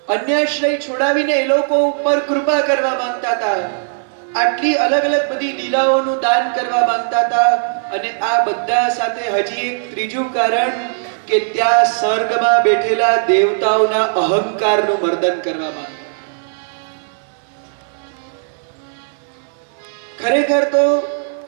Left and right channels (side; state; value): left; silent; digital silence